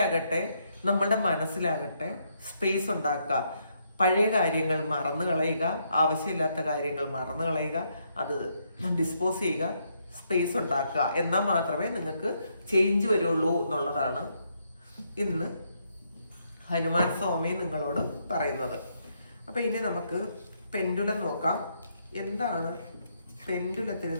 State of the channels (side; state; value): both; inverted; correlation -0.76